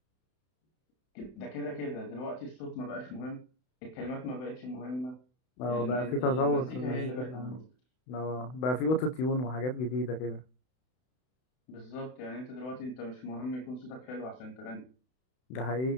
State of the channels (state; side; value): late; right; 32 ms